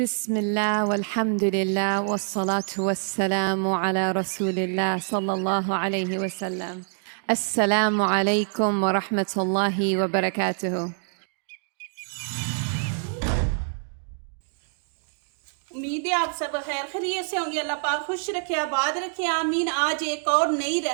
बिस्मिल्लाह वल्हम्दुलिल्लाह वस्सलातु वस्सलामु अला रसूलिल्लाह सल्लल्लाहु अलैहि वसल्लम। अस्सलामु अलैकुम व रहमतुल्लाहि व बरकातुहू। उम्मीद है आप सब खैर खैरियत से होंगे। अल्लाह पाक खुश रखे, आबाद रखे, आमीन। आज एक और नई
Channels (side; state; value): left; silent; 61 dB below the other